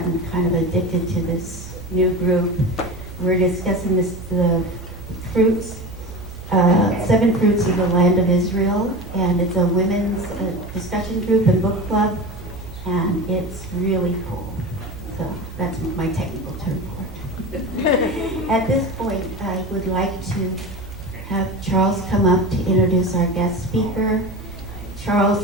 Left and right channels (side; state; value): both; normal; correlation 0.28